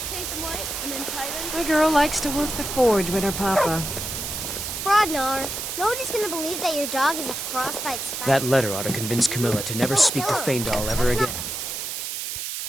Paint them white and then tie them. The girl likes to work the forge with her papa. Fraudnar. Nobody's gonna believe that your dog is a frostbite spider. That letter ought to convince Camilla to never speak to Feindal ever again.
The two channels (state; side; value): noise; right; hiss, 5 dB below the sound